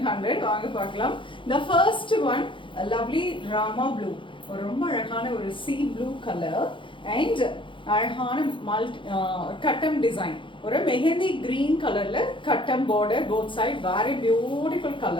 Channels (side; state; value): right; late; 0.24 ms